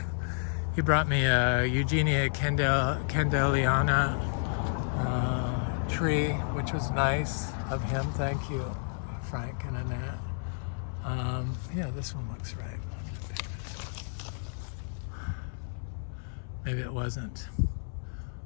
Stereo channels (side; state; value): right; silent; 57 dB below the other